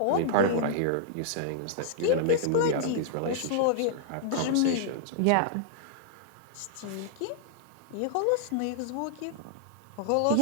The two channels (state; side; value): different; both; correlation -0.01